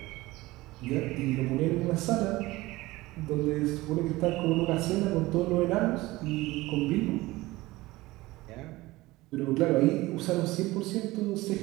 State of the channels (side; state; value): left; quieter; 19.4 dB